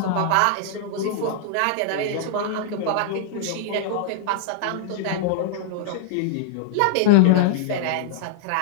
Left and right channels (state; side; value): different; both; correlation -0.01